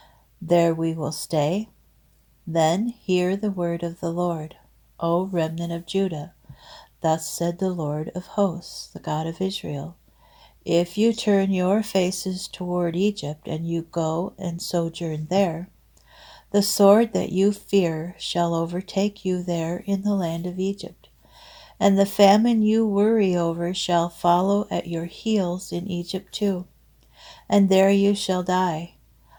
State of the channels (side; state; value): both; identical; correlation 1.00